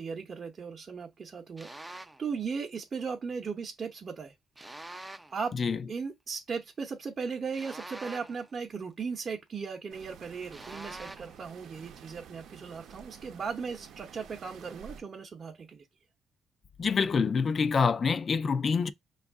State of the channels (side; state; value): both; normal; correlation 0.82